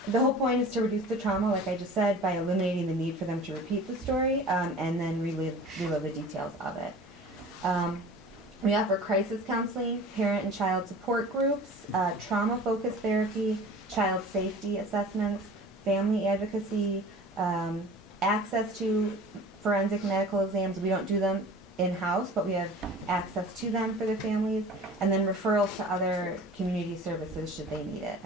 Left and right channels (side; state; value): both; normal; correlation 0.41